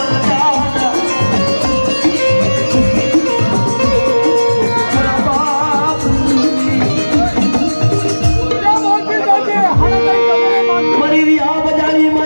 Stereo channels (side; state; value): both; inverted; correlation -1.00